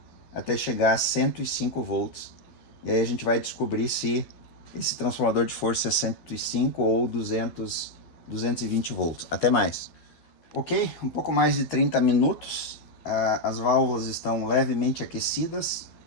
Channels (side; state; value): right; late; 12 ms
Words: até chegar a 105 volts. E aí a gente vai descobrir se esse transformador de força é 105 ou 220 volts. Até mais. Ok, um pouco mais de 30 minutos. As válvulas estão levemente aquecidas.